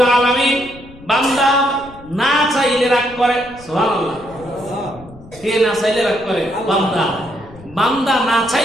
আলামিন বান্দা না চাইলে রাগ করে। সুবহানাল্লাহ। কে না চাইলে রাগ করে? বান্দা। বান্দা না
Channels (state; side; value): noise; left; rumble, 20 dB below the sound